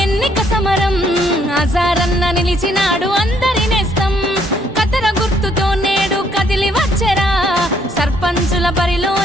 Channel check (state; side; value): normal; both; correlation 0.68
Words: ఎన్నిక సమరం అజారన్న నిలిచినాడు అందరి నేస్తం కతర గుర్తుతో నేడు కదిలి వచ్చరా సర్పంచుల